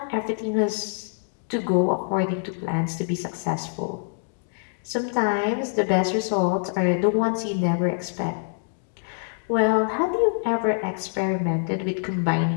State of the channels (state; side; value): silent; right; digital silence